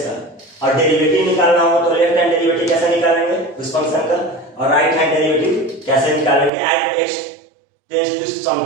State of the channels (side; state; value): left; drops out; at 6.5 s